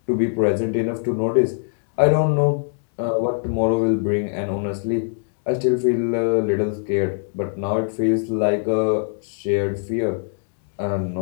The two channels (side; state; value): right; silent; digital silence